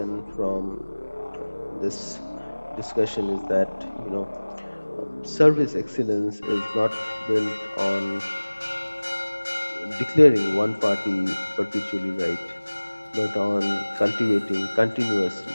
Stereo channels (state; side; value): inverted; both; correlation -1.00